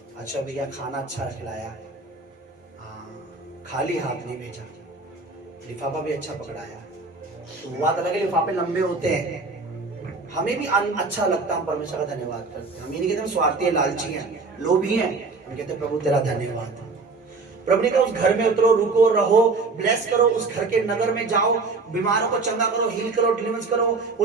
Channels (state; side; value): quieter; left; 4.0 dB